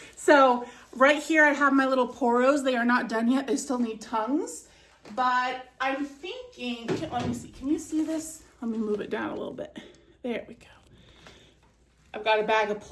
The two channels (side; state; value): both; identical; correlation 1.00